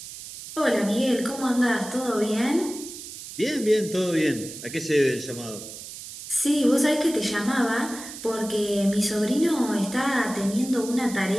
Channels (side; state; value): right; noise; hiss, 12 dB below the sound